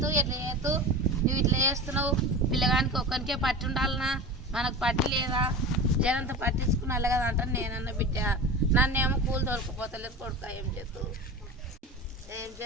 ఎట్లా చేతు, నువ్వు ఇట్లా చేస్తున్నావు, పిల్లగానికి ఒక్కరికే పట్టి ఉండాలనా, మనకు పట్టి లేదా, జనంతా పట్టించుకున్నా కదా అంటాను నేనన్న. బిడ్డ నన్నేమో కూలి దొరికిపోతలేదు కొడుక. ఏం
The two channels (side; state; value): both; normal; correlation 0.31